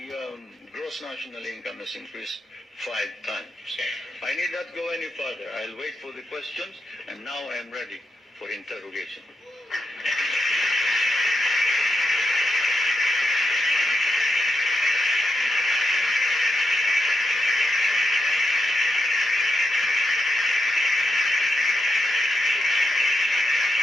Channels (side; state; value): both; normal; correlation 0.84